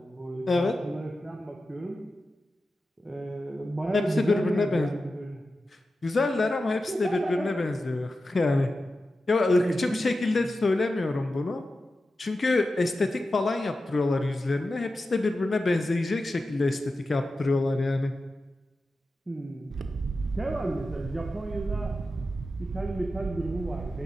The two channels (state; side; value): normal; both; correlation 0.92